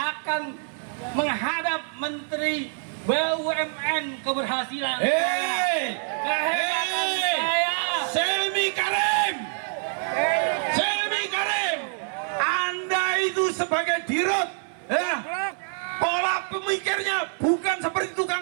menghadap Menteri BUMN keberhasilan kehebatan saya. Selmi Karim, Anda itu sebagai dirut, ya, pola pemikirnya bukan seperti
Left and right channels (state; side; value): silent; left; digital silence